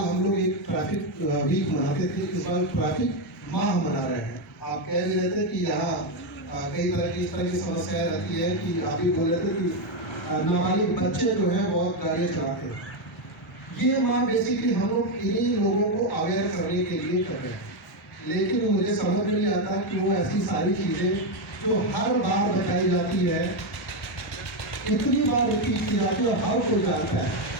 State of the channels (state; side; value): normal; both; correlation 0.06